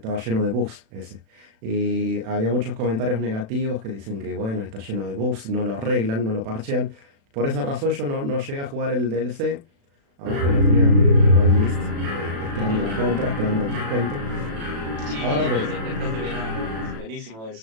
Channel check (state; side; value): late; left; 36 ms